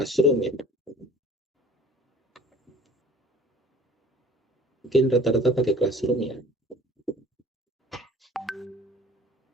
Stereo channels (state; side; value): normal; both; correlation 0.48